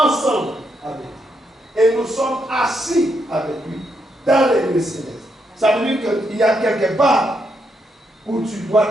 avec lui. Et nous sommes assis avec lui dans les lieux célestes. Ça veut dire qu'il y a quelque part où tu dois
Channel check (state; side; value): normal; both; correlation 0.79